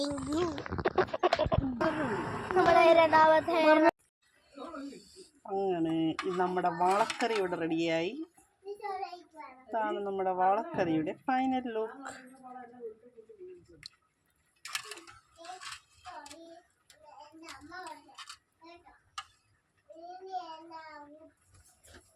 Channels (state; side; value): identical; both; correlation 1.00